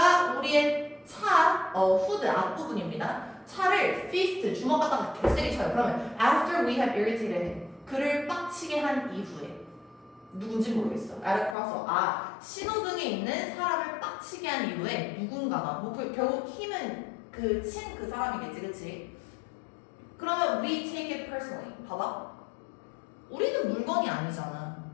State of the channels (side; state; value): right; drops out; at 11.6 s